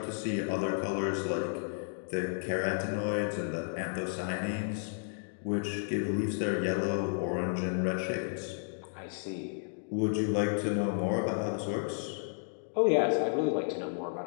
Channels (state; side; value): silent; right; digital silence